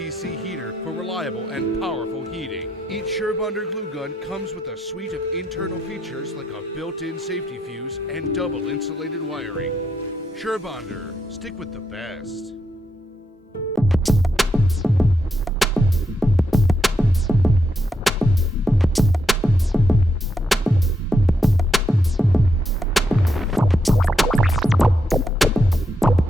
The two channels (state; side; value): normal; both; correlation 0.80